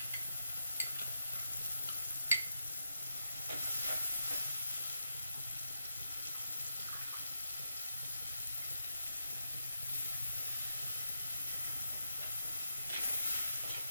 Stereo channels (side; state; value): both; inverted; correlation -0.84